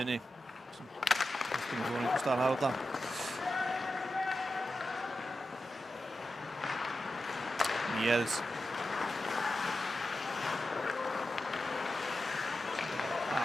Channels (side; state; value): both; normal; correlation 0.91